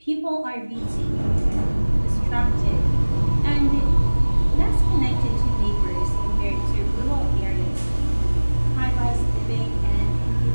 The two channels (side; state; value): both; inverted; correlation -1.00